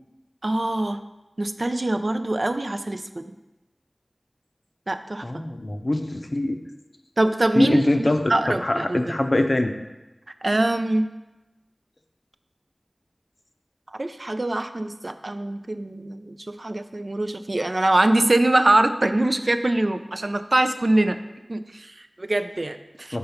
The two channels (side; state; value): both; normal; correlation 0.98